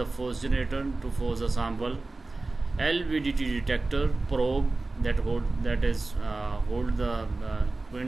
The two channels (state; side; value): quieter; left; 3.3 dB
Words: force generator to force a sample, LVDT detector, probe that hold the